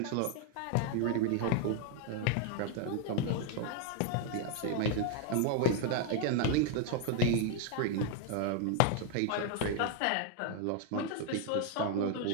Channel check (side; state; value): both; different; correlation 0.00